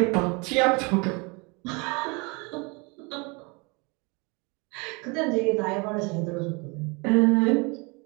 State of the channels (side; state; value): left; quieter; 29.3 dB